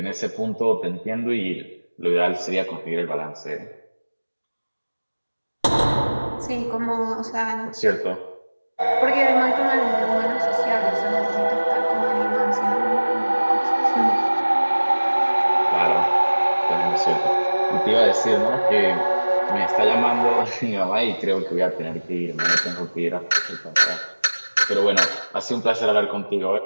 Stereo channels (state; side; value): inverted; both; correlation -1.00